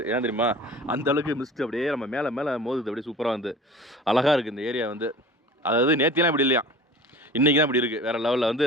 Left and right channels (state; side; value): normal; both; correlation 0.40